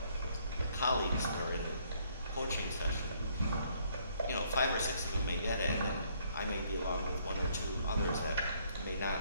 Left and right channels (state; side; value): inverted; both; correlation -0.66